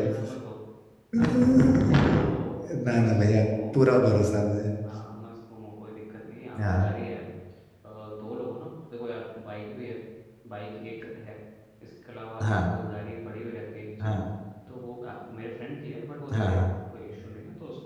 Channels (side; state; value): both; identical; correlation 1.00